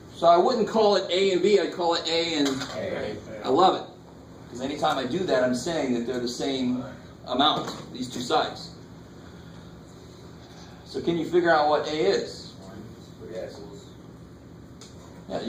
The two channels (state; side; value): identical; both; correlation 1.00